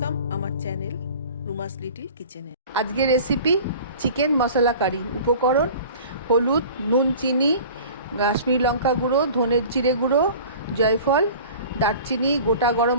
আমার channel রুমাস little কিচেনে। আজকের রেসিপি চিকেন মশলা কারি। উপকরণ: হলুদ, নুন, চিনি, কাশ্মীরি লঙ্কা গুঁড়ো, ধনের জিরে গুঁড়ো, জয়ফল, দারচিনি, গোটা গরম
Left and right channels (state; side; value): inverted; both; correlation -0.42